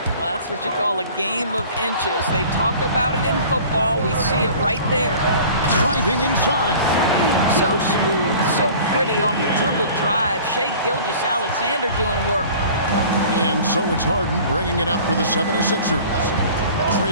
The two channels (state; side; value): inverted; both; correlation -0.45